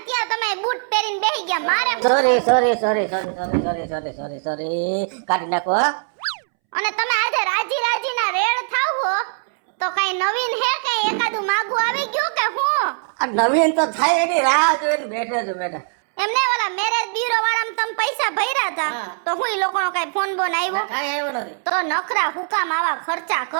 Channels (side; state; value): left; silent; 65 dB below the other